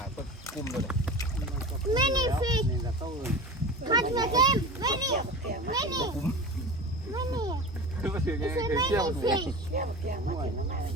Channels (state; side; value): normal; both; correlation 0.32